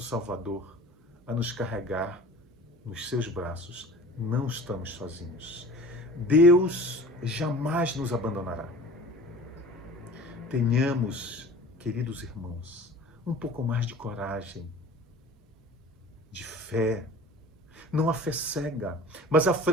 Salvador, a nos carregar nos seus braços. Não estamos sozinhos. Deus jamais nos abandonará. Tenhamos, queridos irmãos, um pouco mais de coragem, de fé. Não a fé cega, mas a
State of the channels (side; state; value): both; normal; correlation 0.42